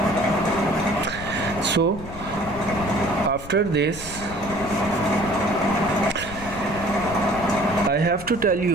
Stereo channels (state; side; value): noise; left; rumble, 13 dB below the sound